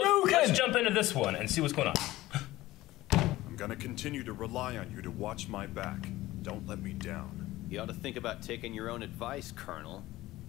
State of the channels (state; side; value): quieter; right; 17.1 dB